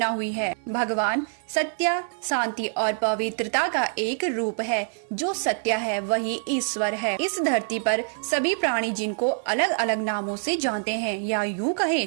हुई है। भगवान सत्य, शांति और पवित्रता का एक रूप है। जो सत्य है वही ईश्वर है। इस धरती पर सभी प्राणी जिनको अलग अलग नामों से जानते हैं, या यूँ कहे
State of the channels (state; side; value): silent; left; digital silence